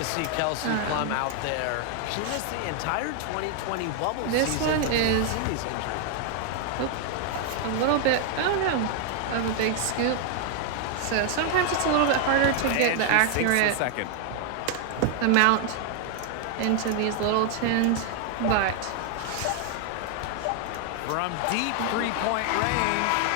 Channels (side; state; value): both; different; correlation 0.00